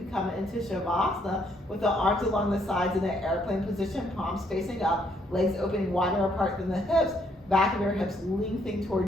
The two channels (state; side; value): normal; both; correlation 0.70